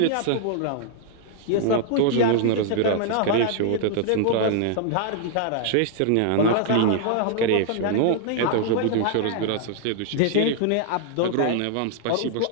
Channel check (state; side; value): different; both; correlation -0.01